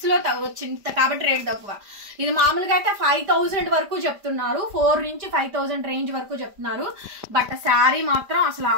లో వచ్చింది కాబట్టి రేట్ తక్కువ. ఇది మామూలుగా అయితే 5000 వరకు చెప్తున్నారు, 4 నుంచి 5000 రేంజ్ వరకు చెప్తున్నారు. బట్ శారీ మాత్రం అసలు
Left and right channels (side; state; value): left; late; 5.0 ms